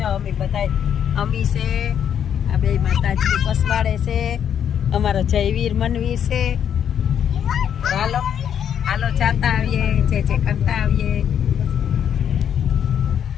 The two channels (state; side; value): quieter; right; 8.8 dB